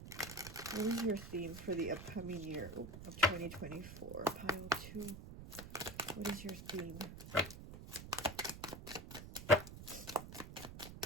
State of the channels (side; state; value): right; noise; rumble, 11 dB below the sound